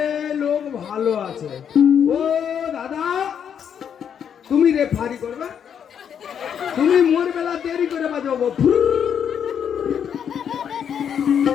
লোক ভালো আছে। ও দাদা, তুমি রেফারি করবে? তুমি মোর বেলা দেরি করে বাজাবো।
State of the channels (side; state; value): right; quieter; 8.2 dB